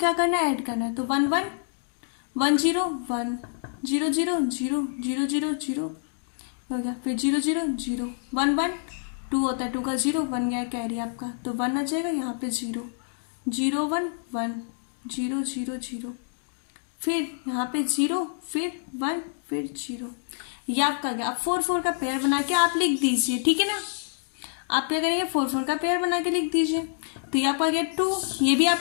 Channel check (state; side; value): silent; right; digital silence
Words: करना है, ऐड करना है, तो 11 10 1 0 0 0 0 0 0 हो गया, फिर 0 0 0 1 1 2 होता है, 2 का 0 1 गया कैरी आपका, तो 1 आ जाएगा, यहाँ पे 0 0 1 1 0 0 0 फिर यहाँ पे 0 फिर 1 फिर 0, ये आपका गया। अब 4 4 का पेयर बना के आप लिख दीजिए, ठीक है ना। आप क्या करेंगे, 4 4 का पेयर बना के लिख दीजिए, तो ये आपका आ गया 2, ये भी